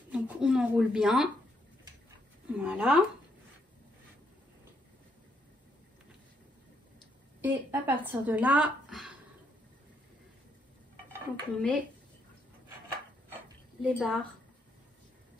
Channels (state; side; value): normal; both; correlation 0.75